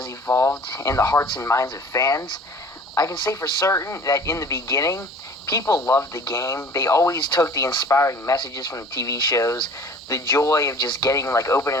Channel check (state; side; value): normal; both; correlation 0.47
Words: evolved in the hearts and minds of fans. I can say for certain that in the beginning, people loved the game. They always took the inspiring messages from the TV shows, the joy of just getting, like, opening